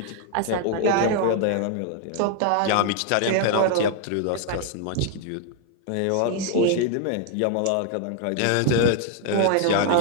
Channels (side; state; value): both; different; correlation 0.00